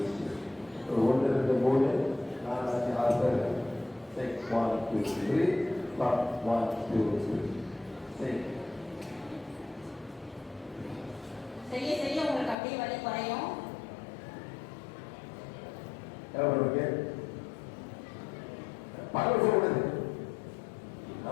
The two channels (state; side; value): drops out; right; at 12.6 s